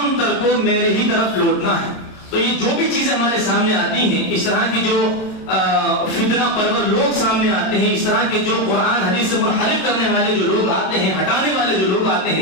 تر کو میرے ہی طرف لوٹنا ہے۔ تو یہ جو بھی چیزیں ہمارے سامنے آتی ہیں، اس طرح کی جو فتنہ پرور لوگ سامنے آتے ہیں، اس طرح کے جو قرآن حدیث سے منحرف کرنے والے جو لوگ آتے ہیں، ہٹانے والے جو لوگ آتے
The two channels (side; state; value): right; late; 26 ms